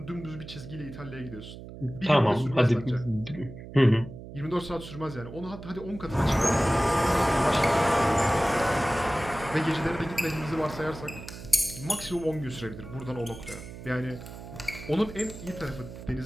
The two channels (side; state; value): right; noise; hum, 13 dB below the sound